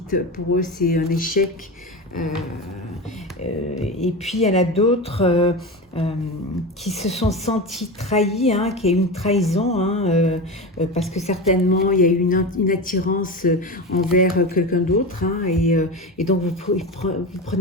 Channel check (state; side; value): normal; both; correlation 0.23